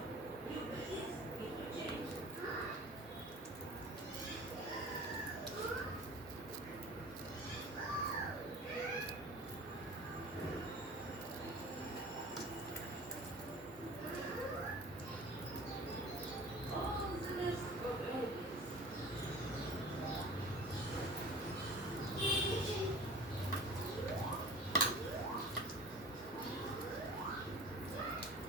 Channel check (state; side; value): normal; both; correlation 0.41